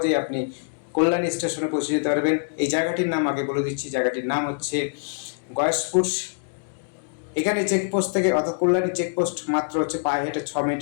আপনি কল্যাণী স্টেশনে পৌঁছে যেতে পারবেন। এই জায়গাটির নাম আগে বলে দিচ্ছি, জায়গাটির নাম হচ্ছে গয়েশপুর। এখানে চেকপোস্ট থেকে অর্থাৎ কল্যাণী চেকপোস্ট মাত্র হচ্ছে পায়ে হেঁটে 6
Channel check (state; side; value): silent; right; digital silence